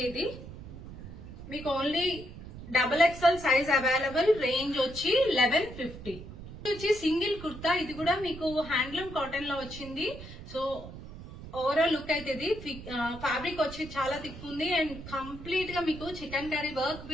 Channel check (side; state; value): right; noise; rumble, 13 dB below the sound